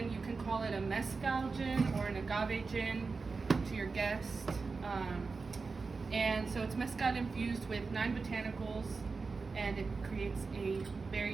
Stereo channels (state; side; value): quieter; left; 4.4 dB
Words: You can call it a mezcal gin or an agave gin to your guest. And so it's mezcal infused with 9 botanicals, and it creates a